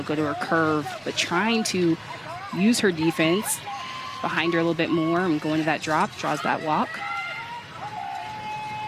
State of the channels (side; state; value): both; identical; correlation 1.00